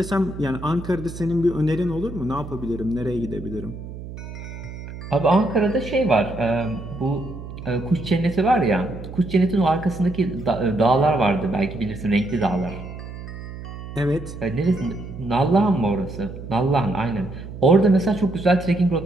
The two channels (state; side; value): noise; right; hum, 11 dB below the sound